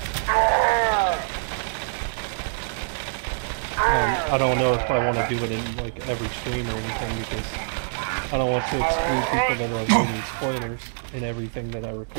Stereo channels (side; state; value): left; silent; digital silence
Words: I don't know if I want to do it in like every stream or anything, because I don't want to exclude people that are avoiding spoilers in everything that I record.